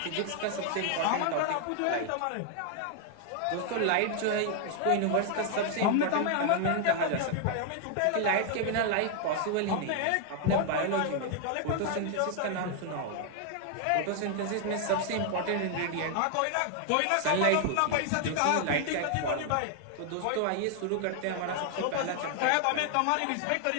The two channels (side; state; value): both; different; correlation 0.00